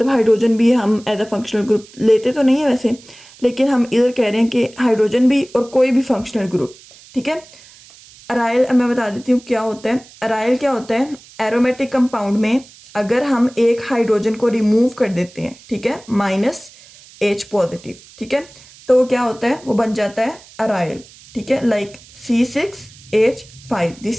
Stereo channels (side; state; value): right; noise; hiss, 23 dB below the sound